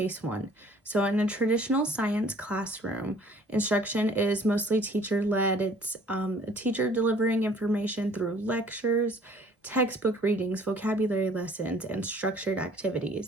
1. So in a traditional science classroom, instruction is mostly teacher-led. It's a teacher delivering information through lectures, textbook readings, vocabulary lessons, and structured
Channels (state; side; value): normal; both; correlation 0.54